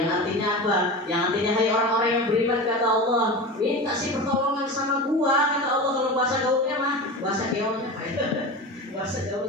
artinya apa? Yang artinya hai orang-orang yang beriman kata Allah, minta sih pertolongan sama gua kata Allah. Kalau bahasa gaulnya mah, bahasa gaulnya apa ya? Bahasa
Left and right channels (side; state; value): both; normal; correlation 0.28